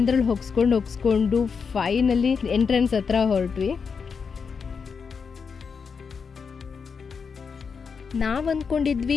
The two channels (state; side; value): quieter; right; 5.8 dB